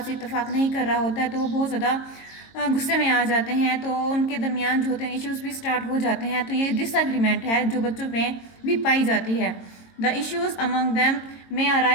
से इत्तेफाक नहीं कर रहा होता है, तो वो बहुत ज़्यादा गुस्से में आ जाते हैं, तो उनके दरमियान जो होते हैं इश्यूज़ भी स्टार्ट हो जाते हैं. तो ये डिसएग्रीमेंट है जो बच्चों में भी पाई जाती है. The issues among them may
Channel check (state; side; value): late; right; 22 ms